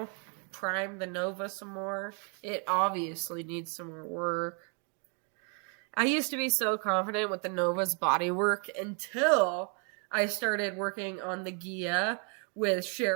prime the Nova some more. It obviously needs some more work. I used to be so confident with the Nova's body work until I started working on the Gia with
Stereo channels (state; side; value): quieter; left; 39.0 dB